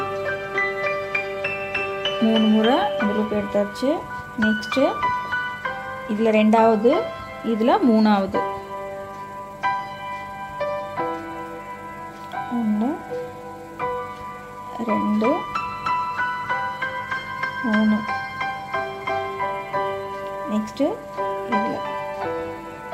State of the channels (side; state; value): both; identical; correlation 1.00